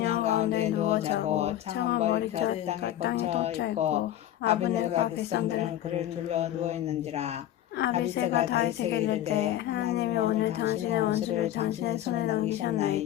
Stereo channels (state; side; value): quieter; right; 12.3 dB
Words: 가운데 누워 자고 창은 머리끝 땅에 덮쳐 있고 아브넬과 백성들은 그를 둘러 누워 있는지라. 아비새가 다윗에게 이르되 하나님이 오늘 당신의 원수를 당신의 손에